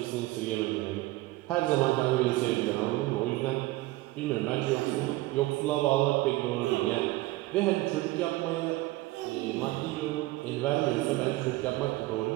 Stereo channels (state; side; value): quieter; left; 19.0 dB